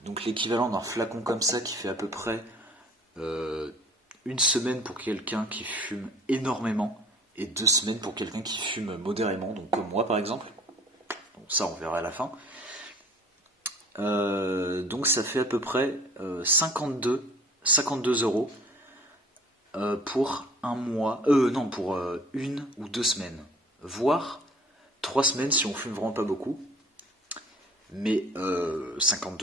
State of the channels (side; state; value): both; normal; correlation 0.50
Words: donc l'équivalent d'un flacon comme ça qui fait à peu près euh, une semaine pour quelqu'un qui fume énormément et 2 semaines pour quelqu'un qui fume modérément, donc comme moi par exemple. Donc ça on verra à la fin. Donc ça fait à peu près 52 euros pour un mois, non pour 1 ou 2 semaines, voire 3 semaines si on fume vraiment pas beaucoup. Mais